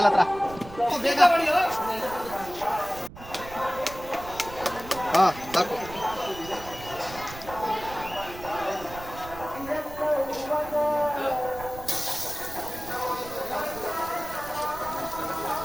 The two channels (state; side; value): noise; right; rumble, 15 dB below the sound